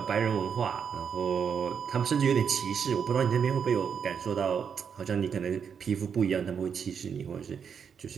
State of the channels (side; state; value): left; quieter; 7.0 dB